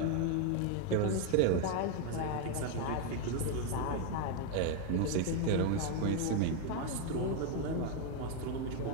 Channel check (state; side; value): different; both; correlation 0.01